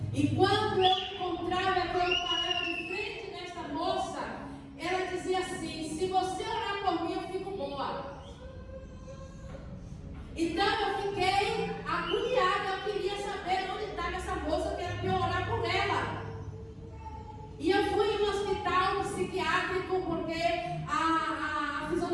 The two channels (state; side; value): identical; both; correlation 1.00